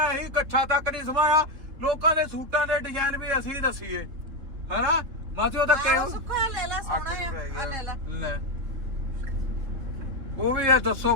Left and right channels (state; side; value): late; left; 3.7 ms